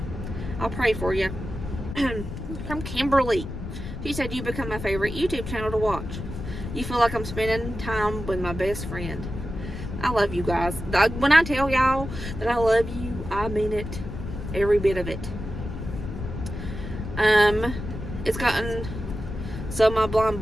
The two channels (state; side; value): noise; left; rumble, 8 dB below the sound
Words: I'll pray for you. From Kimberly. She said, you become my favorite YouTube channel to watch. You feel like I'm spending time with my best friend. I love you guys. When I tell y'all that I love you, I mean it. Every bit of it. It's gotten so my blind